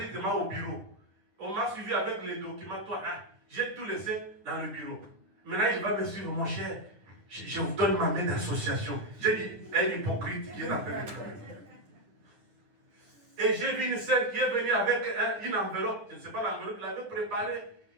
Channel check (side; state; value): left; late; 9.8 ms